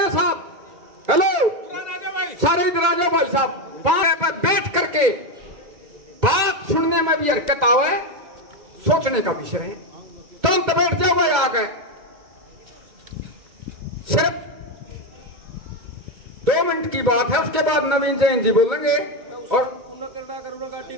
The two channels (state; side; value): late; left; 2.1 ms